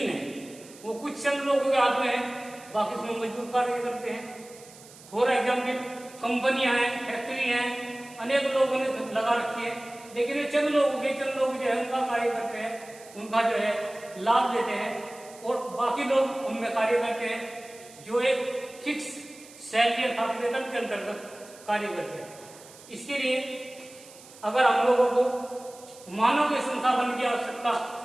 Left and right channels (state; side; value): noise; right; hiss, 21 dB below the sound